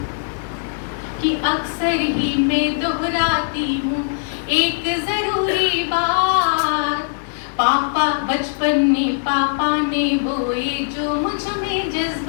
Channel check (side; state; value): right; silent; digital silence